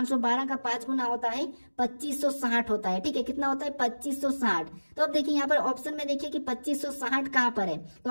का 5 गुना होता है 2560 होता है। ठीक है, कितना होता है 2560। तो अब देखिए यहाँ पर ऑप्शन में देखिए कि 2560 कहाँ पर है, तो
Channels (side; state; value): both; inverted; correlation -1.00